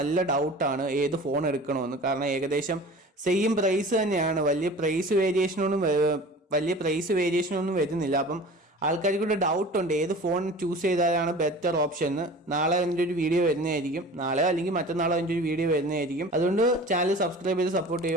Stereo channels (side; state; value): both; normal; correlation 0.40